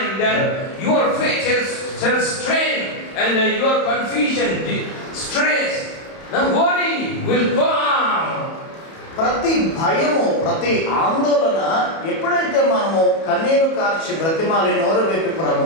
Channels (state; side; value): late; right; 31 ms